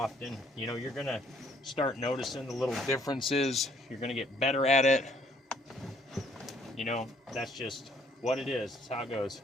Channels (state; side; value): normal; both; correlation 0.64